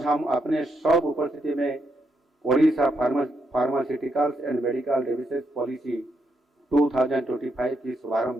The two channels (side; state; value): both; normal; correlation 0.79